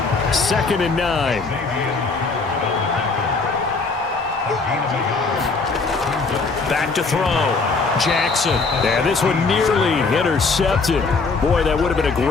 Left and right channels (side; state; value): right; quieter; 4.2 dB